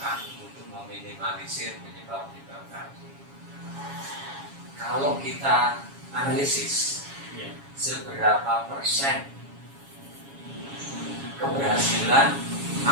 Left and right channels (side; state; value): left; late; 7.2 ms